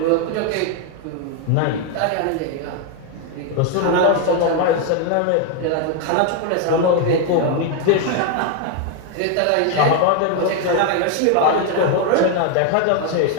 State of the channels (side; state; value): both; different; correlation 0.01